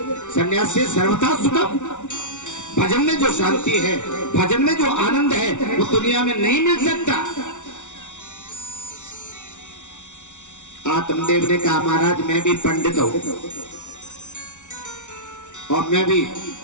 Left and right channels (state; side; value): late; right; 0.85 ms